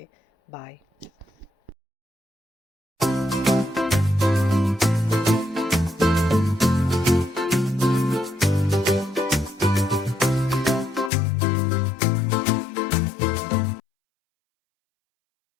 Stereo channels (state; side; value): drops out; right; at 11.1 s